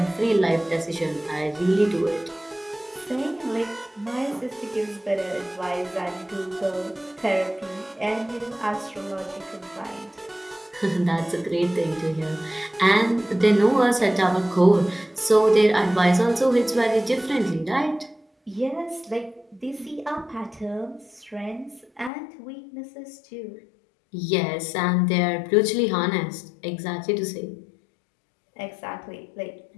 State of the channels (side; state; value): right; drops out; at 22.1 s